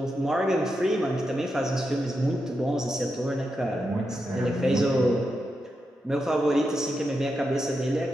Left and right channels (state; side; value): normal; both; correlation 0.86